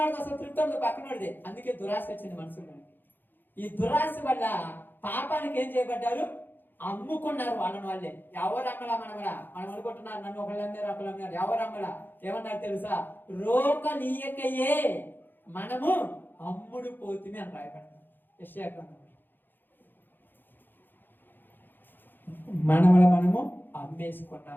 అసలు తృప్తి పక్కనోడిదే. అందుకే దురాశ వచ్చింది మనసులో. ఈ దురాశ వల్ల పాపానికి ఏం చేయబడ్డారు? అమ్ముకున్నారు వాళ్ళని వాళ్ళే. ఎవరు అమ్మలా? మనం అనుకుంటున్నారు నన్ను ఒకళ్ళు అమ్మారు, ఒకళ్ళు అమ్మారు. ఎవరు అమ్మలా? ఏమన్నారు తెలుసా? రోకలీయకయే మనము అమ్ముడు పోతుమే అని రాయబడ్డారు యెషయా గ్రంథంలో. మనము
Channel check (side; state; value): right; late; 0.093 ms